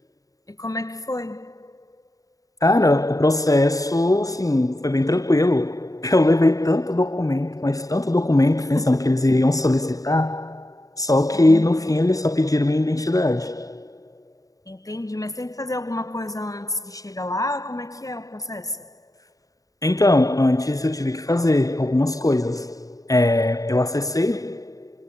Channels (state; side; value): late; right; 0.17 ms